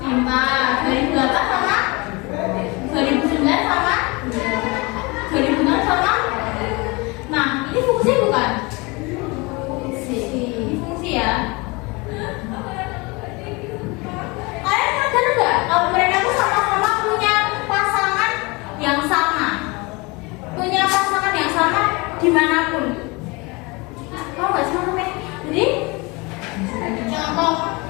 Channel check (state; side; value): quieter; right; 26.3 dB